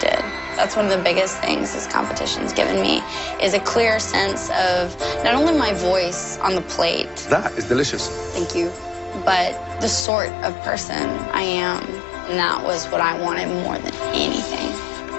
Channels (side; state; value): right; drops out; at 10.1 s